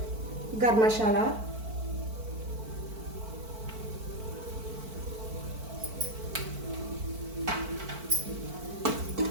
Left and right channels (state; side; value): late; left; 4.5 ms